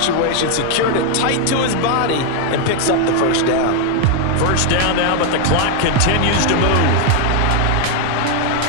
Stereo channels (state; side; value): different; both; correlation 0.01